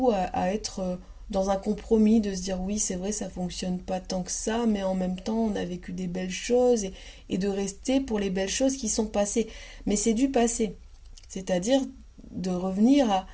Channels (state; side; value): identical; both; correlation 1.00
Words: à être dans un compromis, de se dire oui, c'est vrai, ça fonctionne pas tant que ça, mais en même temps, on a vécu des belles choses et de rester pour les belles choses qui sont passées. Mais c'est du passé, c'est-à-dire de revenir à